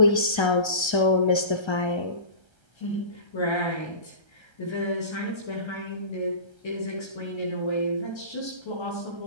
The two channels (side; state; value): right; late; 1.3 ms